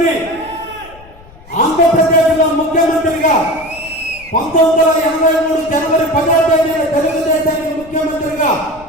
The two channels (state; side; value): noise; left; rumble, 22 dB below the sound